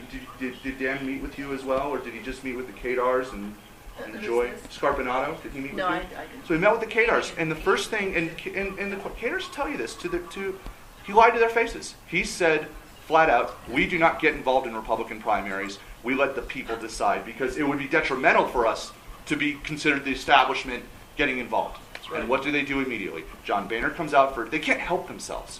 did Dan meet with you as well, or did he just meet with the Kadars and Joy Scarpinato? Did he meet with you? I didn't. So he met with the Kadars, and the first thing, and the Kadars tell you this, he lied to their faces. He said, flat out, we do not get involved in Republican primaries. We let the people decide, because it would be detrimental for us to be considered the establishment getting involved. Right. And what do they do immediately? John Boehner comes out they can't help themselves.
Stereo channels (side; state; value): both; identical; correlation 1.00